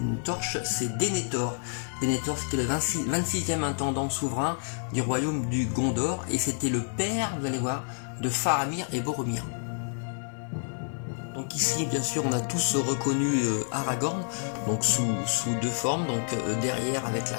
torche, c'est Denethor. Denethor c'était le 26e intendant souverain du royaume du Gondor et c'était le père, vous allez voir, de Faramir et Boromir. Donc ici bien sûr on a tous reconnu Aragorn donc sous 2 formes, donc derrière avec la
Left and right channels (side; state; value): right; silent; digital silence